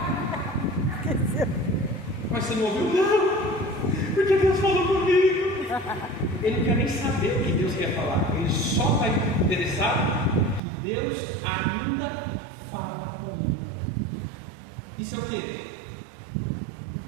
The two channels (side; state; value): left; drops out; at 10.6 s